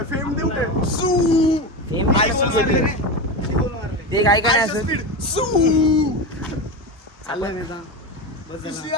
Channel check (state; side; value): normal; both; correlation 0.20